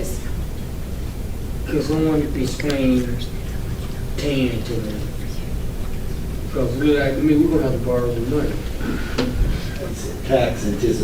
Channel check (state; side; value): identical; both; correlation 1.00